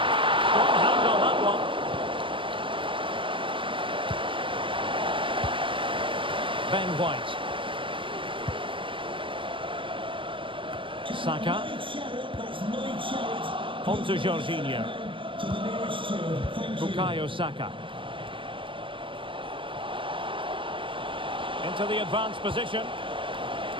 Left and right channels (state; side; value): late; left; 0.25 ms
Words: Strong hand on that one. Ben White. Saka. On to Jorginho. Bukayo Saka. Into the advanced position.